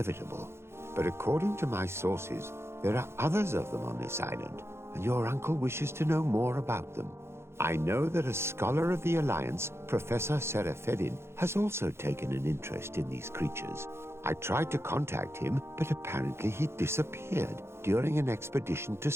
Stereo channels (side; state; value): left; late; 0.12 ms